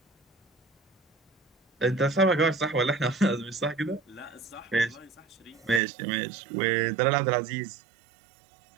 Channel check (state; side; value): drops out; left; at 5.8 s